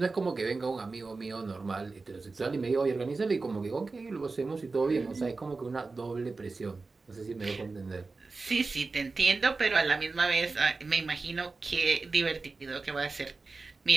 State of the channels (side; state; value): left; quieter; 3.9 dB